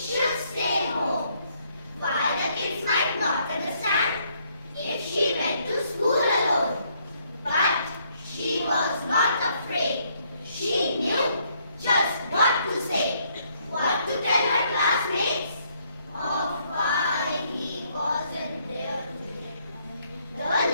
stay home. Why the kids might not understand if she went to school alone. But she was not afraid. She knew just what to say, what to tell her classmates of why he wasn't there today. The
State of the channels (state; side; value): inverted; both; correlation -0.70